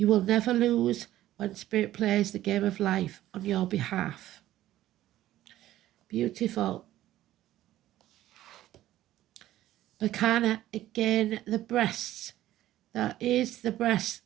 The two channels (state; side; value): quieter; left; 14.1 dB